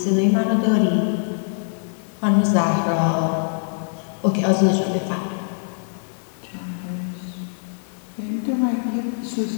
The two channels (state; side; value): silent; right; digital silence